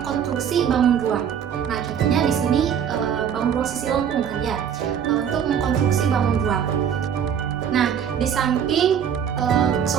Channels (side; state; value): left; quieter; 8.3 dB